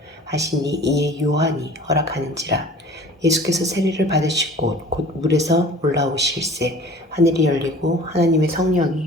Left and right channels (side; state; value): both; normal; correlation 0.45